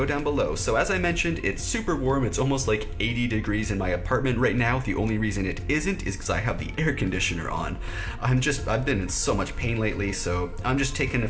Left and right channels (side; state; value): both; identical; correlation 1.00